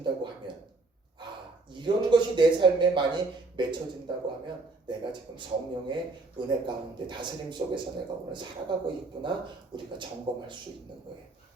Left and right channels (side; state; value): left; quieter; 3.5 dB